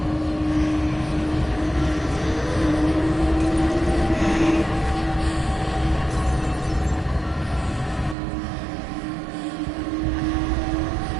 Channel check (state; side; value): drops out; left; at 8.2 s